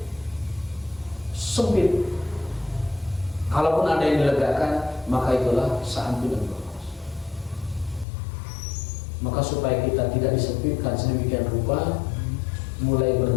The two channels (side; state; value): right; drops out; at 8.1 s